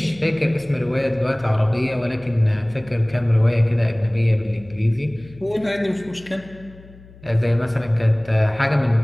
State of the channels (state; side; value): noise; left; hum, 22 dB below the sound